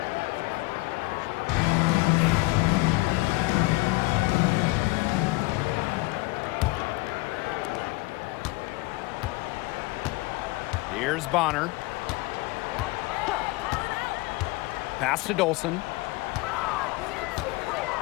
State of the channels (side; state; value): right; quieter; 22.7 dB